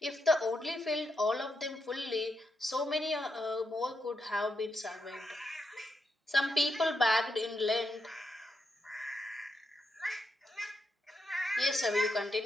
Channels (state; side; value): normal; both; correlation 0.83